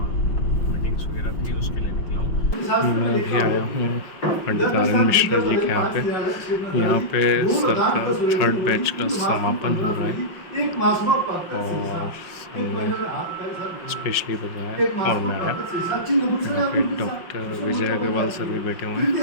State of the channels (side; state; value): right; late; 5.5 ms